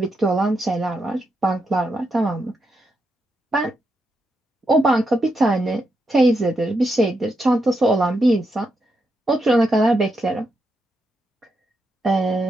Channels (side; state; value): both; normal; correlation 0.83